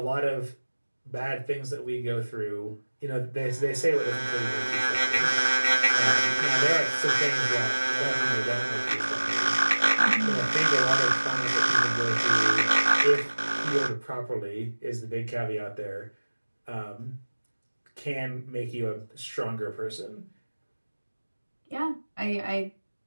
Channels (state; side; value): inverted; both; correlation -1.00